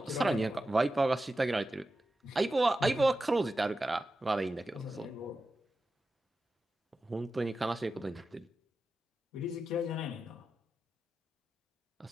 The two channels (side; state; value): both; normal; correlation 0.92